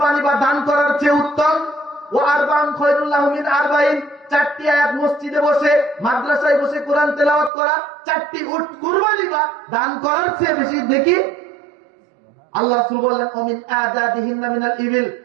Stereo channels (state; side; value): drops out; left; at 7.5 s